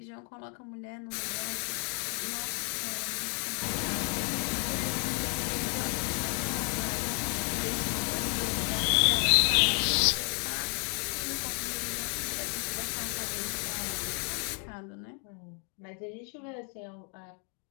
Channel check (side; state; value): right; quieter; 38.1 dB